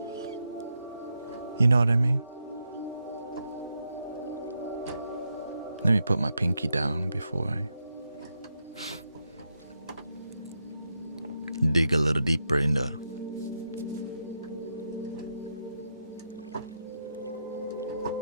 You know what I mean? Let me put my pinky down before I dig a little deeper in the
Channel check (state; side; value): inverted; both; correlation -0.83